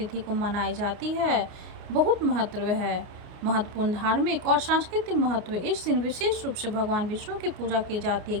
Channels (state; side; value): late; left; 29 ms